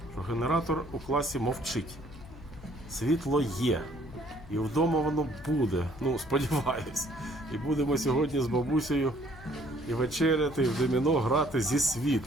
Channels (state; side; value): noise; left; hum, 17 dB below the sound